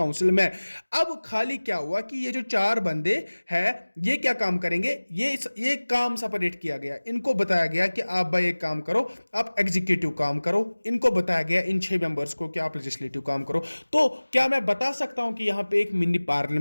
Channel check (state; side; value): inverted; both; correlation -1.00